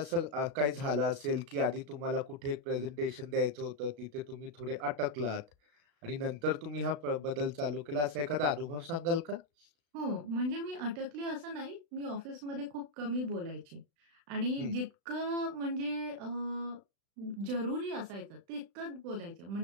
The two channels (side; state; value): left; late; 36 ms